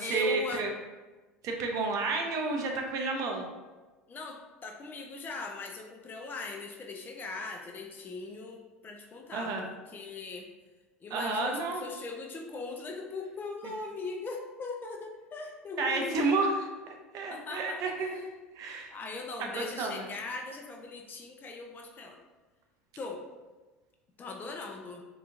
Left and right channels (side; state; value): both; normal; correlation 0.30